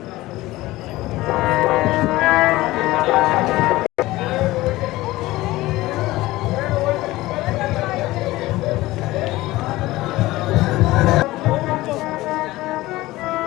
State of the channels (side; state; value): right; quieter; 18.3 dB